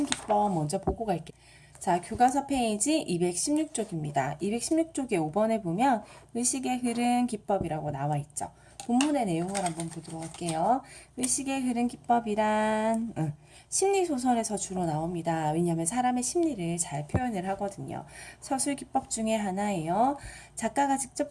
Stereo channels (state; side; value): identical; both; correlation 1.00